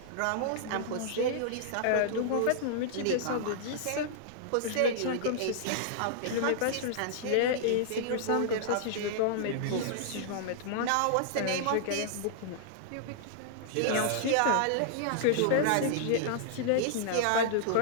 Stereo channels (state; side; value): different; both; correlation -0.01